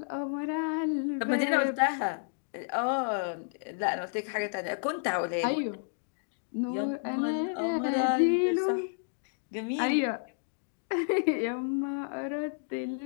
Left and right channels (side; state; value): right; silent; digital silence